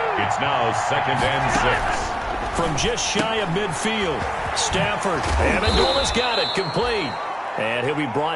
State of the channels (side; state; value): both; identical; correlation 1.00